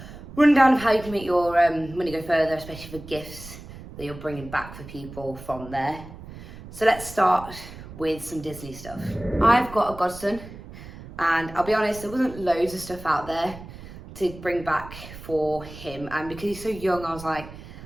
rundown of how you can make your money go further, especially for gifts that you're bringing back for people from there. So let's start with some Disney stuff. I've got a godson, and I'll be honest, there wasn't loads of stuff out there to bring back for him, and because he's so young, I was like,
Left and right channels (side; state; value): right; noise; rumble, 15 dB below the sound